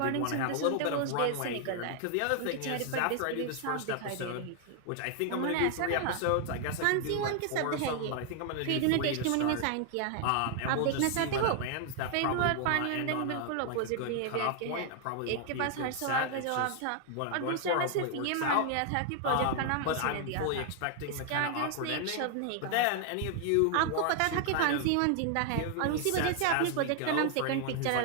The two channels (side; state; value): both; different; correlation 0.00